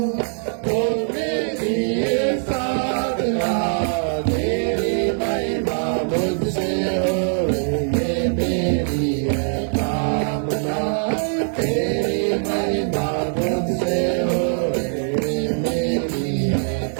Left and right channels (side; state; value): left; silent; 64 dB below the other